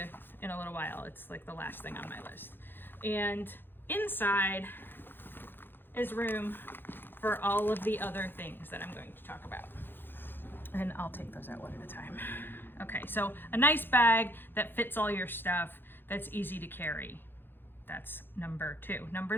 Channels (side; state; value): right; late; 0.099 ms